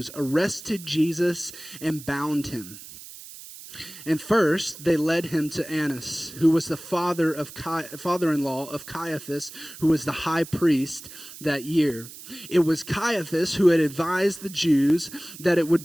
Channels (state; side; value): noise; right; hiss, 15 dB below the sound